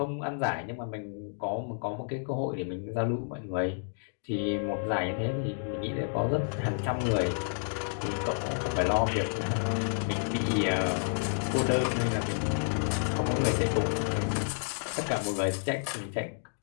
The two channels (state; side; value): silent; right; digital silence